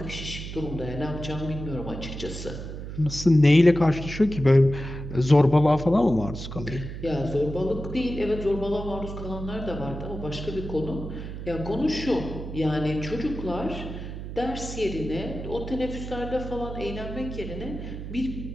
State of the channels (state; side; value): noise; right; hum, 8 dB below the sound